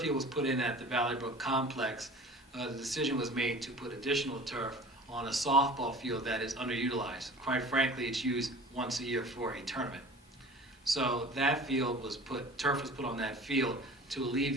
field was put in at the Valley Brook complex, the decision was made to put additional turf on a softball field that is underutilized. Quite frankly, it's used once a year for a tournament. So that turf was put on that field to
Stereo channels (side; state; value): both; normal; correlation 0.42